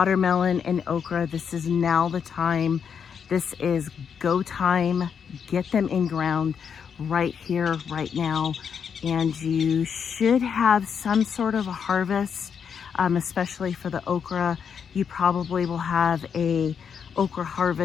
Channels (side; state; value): right; quieter; 7.0 dB